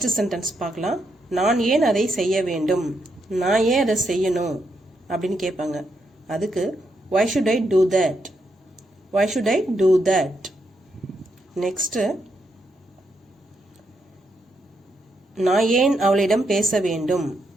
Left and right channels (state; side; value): normal; both; correlation 0.80